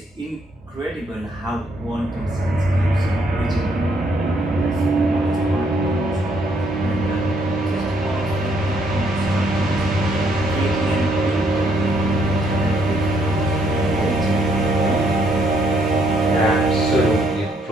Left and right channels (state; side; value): normal; both; correlation 0.70